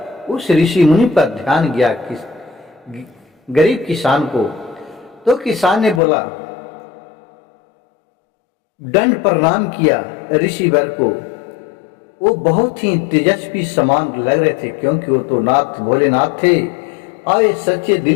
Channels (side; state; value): right; drops out; at 6.0 s